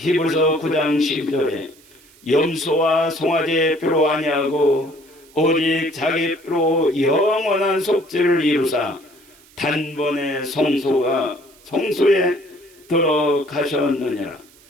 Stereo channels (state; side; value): noise; right; hiss, 27 dB below the sound